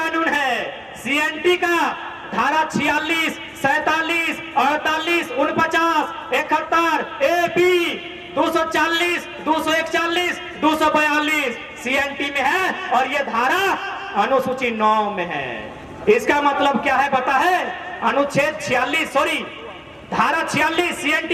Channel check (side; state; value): both; identical; correlation 1.00